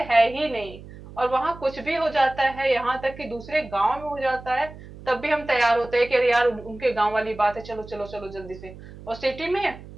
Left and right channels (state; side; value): noise; right; hum, 16 dB below the sound